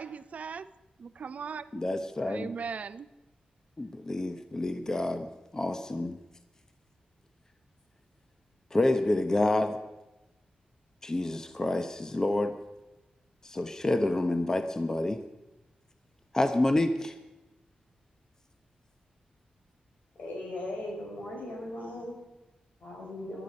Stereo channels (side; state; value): both; normal; correlation 0.95